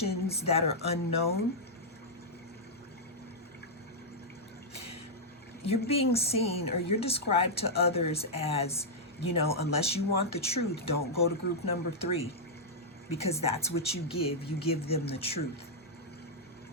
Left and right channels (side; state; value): both; normal; correlation -0.07